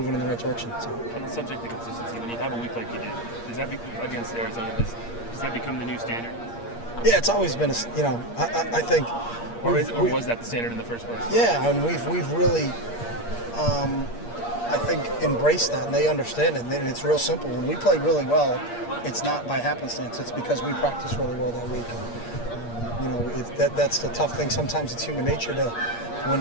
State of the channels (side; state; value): right; late; 8.6 ms